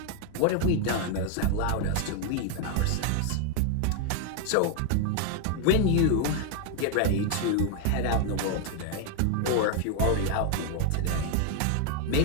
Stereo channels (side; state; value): both; different; correlation 0.00